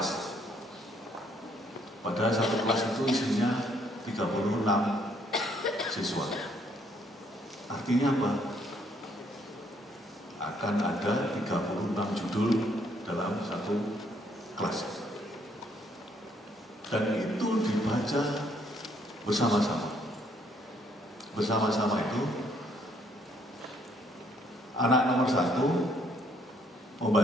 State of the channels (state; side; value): normal; both; correlation 0.68